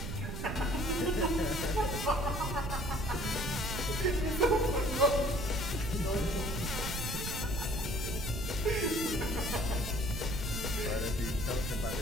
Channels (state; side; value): noise; right; rumble, 4 dB below the sound